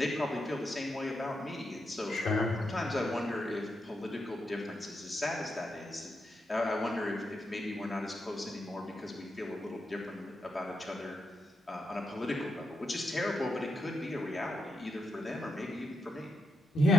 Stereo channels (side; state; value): both; normal; correlation 0.83